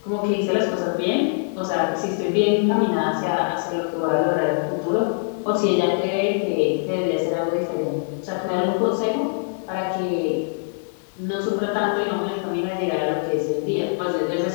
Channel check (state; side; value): silent; right; digital silence